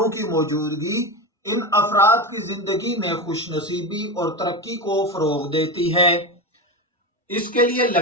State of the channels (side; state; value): both; normal; correlation 0.19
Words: کی موجودگی ان افراد کی زندگی میں خوش نصیبی اور ترقی کو فروغ دیتی ہے۔ اس کے لیے